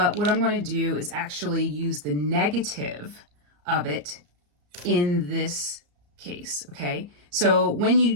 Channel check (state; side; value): late; left; 34 ms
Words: what I'm going to do is actually use the negative of it in this case, okay? So when